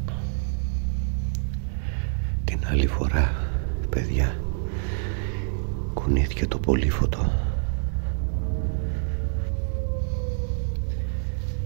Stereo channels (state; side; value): silent; left; digital silence